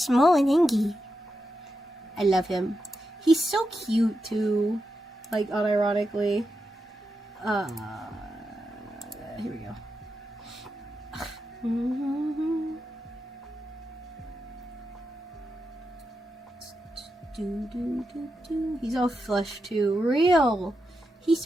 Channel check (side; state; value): both; normal; correlation 0.87